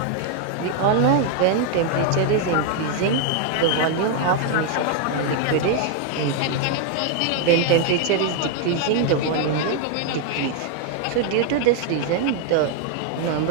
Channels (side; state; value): both; different; correlation 0.00